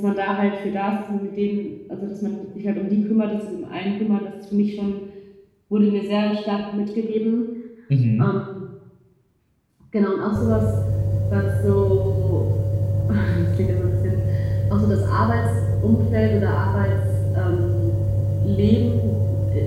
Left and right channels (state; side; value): identical; both; correlation 1.00